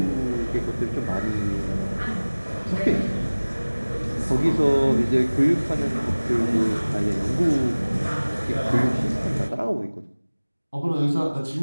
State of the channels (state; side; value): inverted; both; correlation -1.00